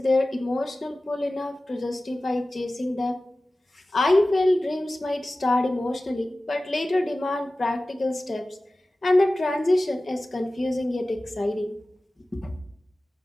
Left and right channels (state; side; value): normal; both; correlation 0.96